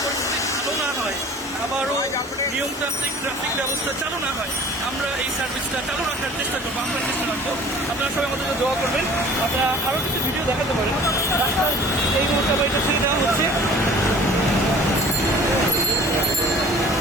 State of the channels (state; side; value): normal; both; correlation 0.47